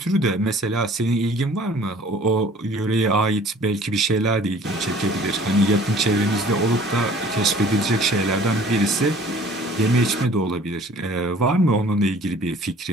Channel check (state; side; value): normal; both; correlation 0.51